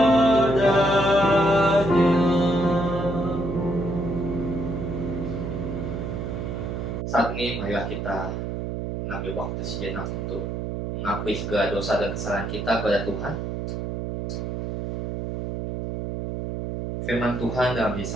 Saat ini marilah kita mengambil waktu sejenak untuk mengakui segala dosa dan kesalahan kita kepada Tuhan. Firman Tuhan dalam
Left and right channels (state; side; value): noise; right; hum, 4 dB below the sound